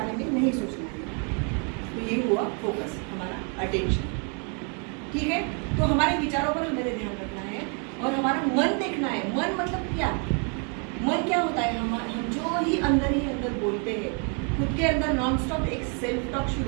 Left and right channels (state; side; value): quieter; left; 38.5 dB